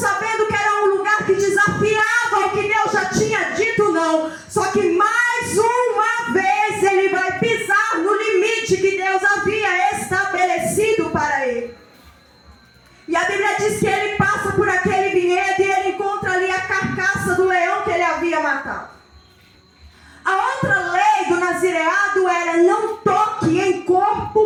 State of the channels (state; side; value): identical; both; correlation 1.00